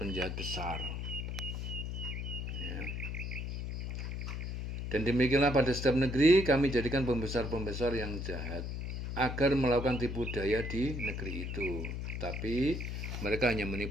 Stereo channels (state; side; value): noise; left; hum, 4 dB below the sound